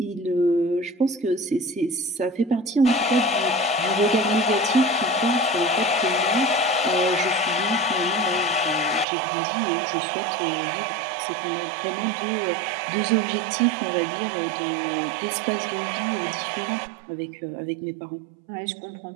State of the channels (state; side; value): drops out; left; at 9.1 s